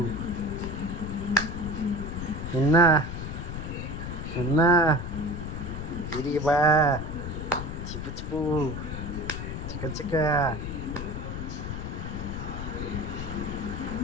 এন্না এন্না দিদি বা চিপু চিপু চিকা চিকা।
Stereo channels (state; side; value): noise; left; rumble, 6 dB below the sound